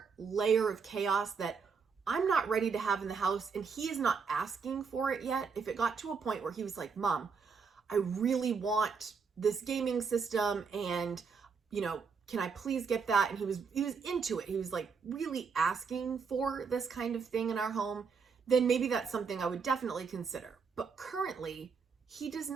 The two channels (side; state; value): left; quieter; 5.5 dB